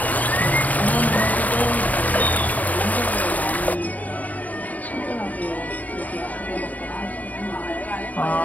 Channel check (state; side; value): late; right; 0.075 ms